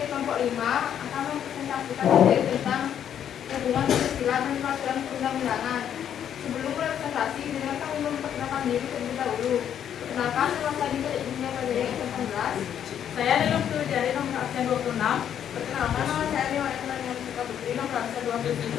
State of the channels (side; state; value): right; quieter; 9.4 dB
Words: kelompok 5 akan mempresentasikan materi tentang hubungan Pancasila dan peraturan perundang-undangan. Sebelum presentasi, dengan kami memperkenalkan diri terlebih dahulu. Perkenalkan, nama saya Dika Ibunya Pajari S18. Saya Lelum Jari nomor absen 26. Perkenalkan, nama saya Dewa Ekman yang suka Putri nomor absen